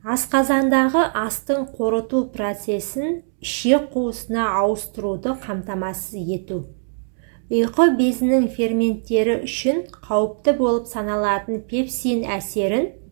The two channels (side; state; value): left; silent; digital silence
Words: асқазандағы астың қорыту процесін ішек қуысына ауыстыруды қамтамасыз ету, ұйқы безінің ферменттері үшін қауіпті болып саналатын пепсин әсерін